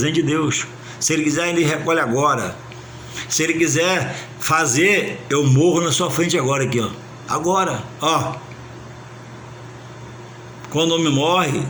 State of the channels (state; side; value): identical; both; correlation 1.00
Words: de Deus. Se ele quiser, ele recolhe agora. Se ele quiser fazer, eu morro na sua frente agora aqui, agora, Quando o homem morre,